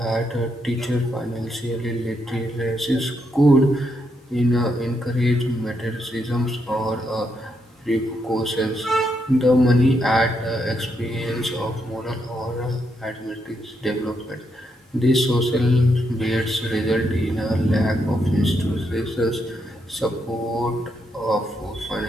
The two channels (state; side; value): normal; both; correlation 0.79